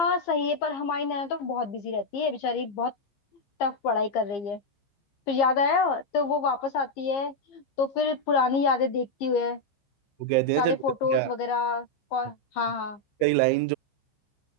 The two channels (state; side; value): late; right; 15 ms